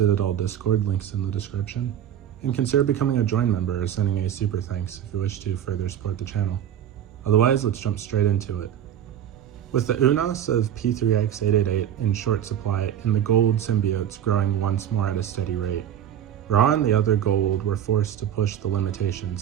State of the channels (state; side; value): quieter; left; 10.1 dB